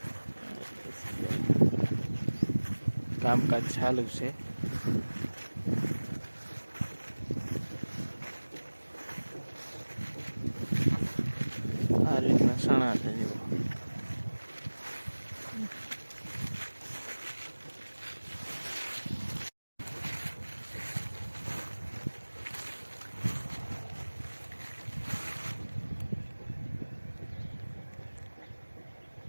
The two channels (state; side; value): inverted; both; correlation -1.00